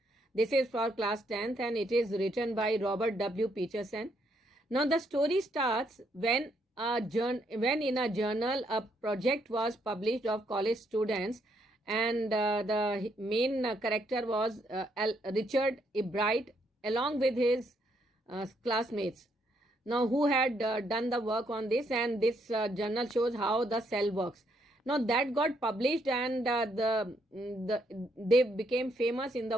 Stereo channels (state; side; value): normal; both; correlation 0.74